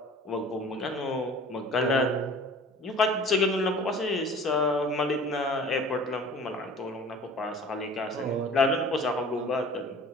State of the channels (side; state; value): both; normal; correlation 0.44